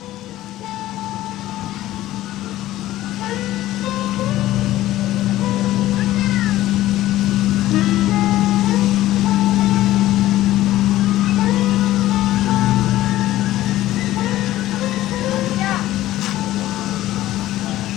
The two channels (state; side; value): quieter; right; 15.0 dB